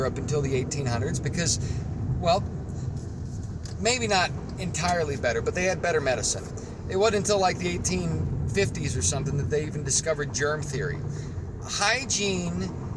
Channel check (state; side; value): identical; both; correlation 1.00